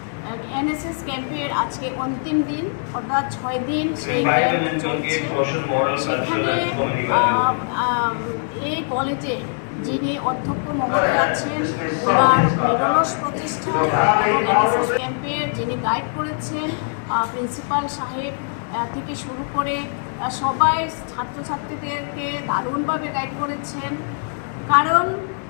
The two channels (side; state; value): right; silent; digital silence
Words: এনএসএস ক্যাম্পের আজকে অন্তিম দিন, অর্থাৎ 6 দিন সেই ক্যাম্প চলছে। সেখানে এই কলেজে যিনি অধ্যক্ষ মহোদয় আছেন, ওনার নিরলস প্রচেষ্টা এবং এনএসএস ক্যাম্পের যিনি গাইড করেছেন প্রিন্সিপাল সাহেব থেকে শুরু করে সবাই ছাত্রছাত্রীদেরকে দারুণভাবে গাইড করেছেন। কারণ